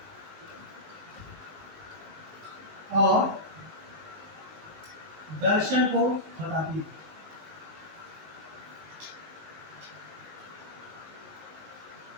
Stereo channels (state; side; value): late; left; 19 ms